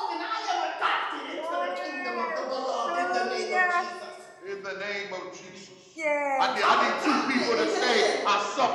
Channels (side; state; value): both; identical; correlation 1.00